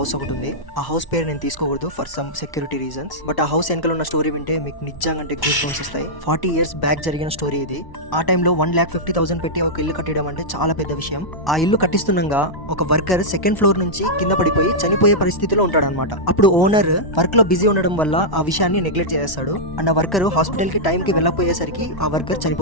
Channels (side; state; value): right; late; 1.1 ms